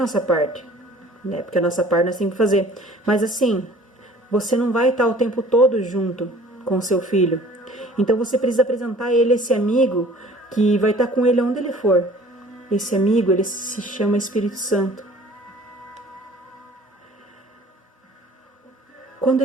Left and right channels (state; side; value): normal; both; correlation 0.50